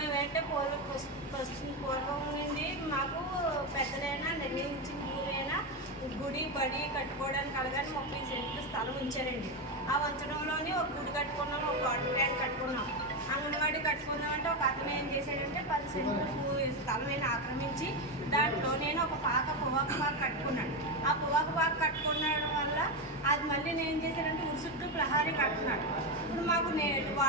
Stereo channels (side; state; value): both; normal; correlation 0.11